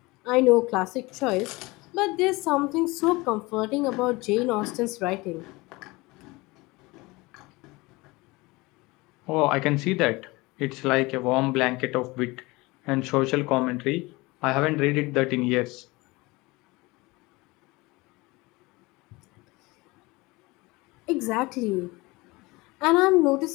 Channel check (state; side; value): quieter; right; 22.9 dB